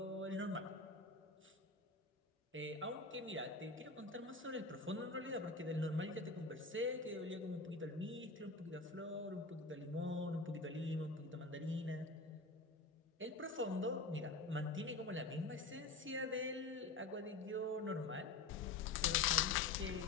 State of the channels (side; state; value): right; quieter; 3.8 dB